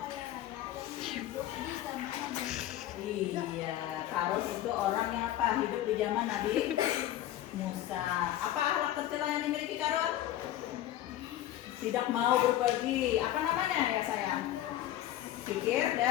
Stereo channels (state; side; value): quieter; right; 13.1 dB